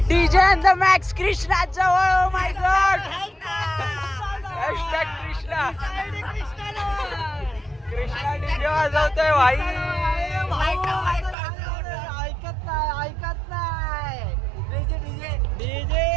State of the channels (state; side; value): drops out; left; at 11.4 s